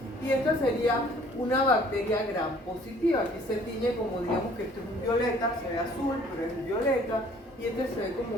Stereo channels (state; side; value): normal; both; correlation 0.56